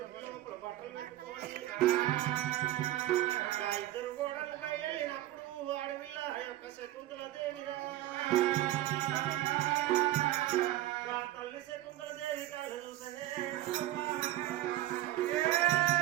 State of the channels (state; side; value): quieter; left; 14.9 dB